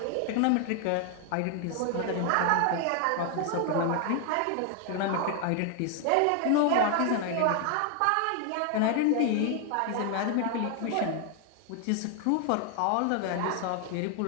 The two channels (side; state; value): both; different; correlation 0.00